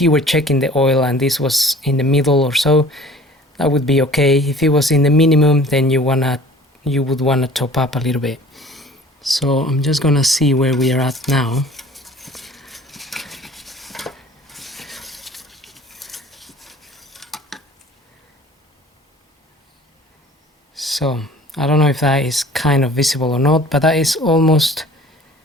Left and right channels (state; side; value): normal; both; correlation 0.48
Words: you were checking the oil and this was in the middle or so, that would be okay. If it was in the minimum, then you would wanna top up a little bit. So I'm just gonna see where we are at now. So I don't know if that is kind of visible or not, but that is almost